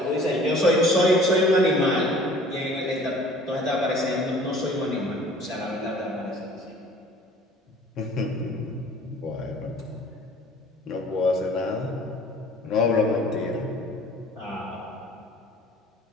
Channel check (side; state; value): both; normal; correlation 0.50